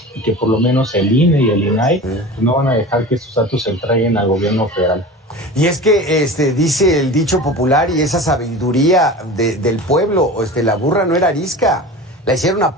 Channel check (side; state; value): both; normal; correlation 0.34